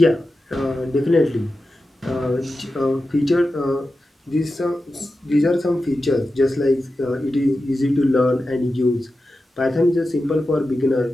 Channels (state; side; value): normal; both; correlation 0.92